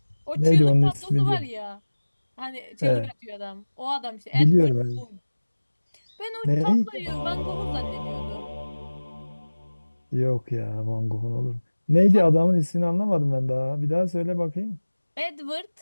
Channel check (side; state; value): both; inverted; correlation -1.00